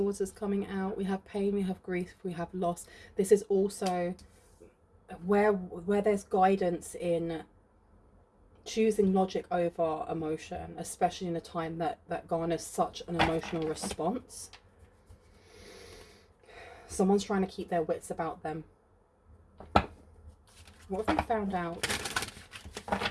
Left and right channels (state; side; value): identical; both; correlation 1.00